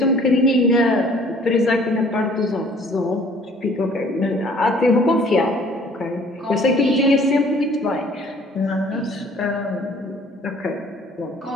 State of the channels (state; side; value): normal; both; correlation 0.55